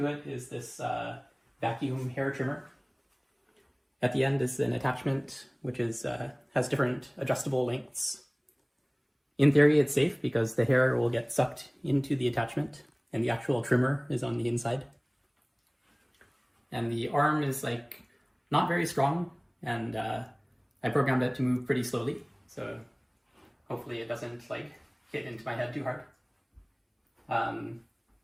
it is this vacuum hair trimmer. At the end is an attachment which has different adjustable lengths. In theory it's safe because the hair will get sucked into the attachment and the actual trimmer is on the inside. And the arm is not very strong, and I programmed it to move pretty slowly, so hopefully it doesn't hit into my head too hard.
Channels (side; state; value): both; identical; correlation 1.00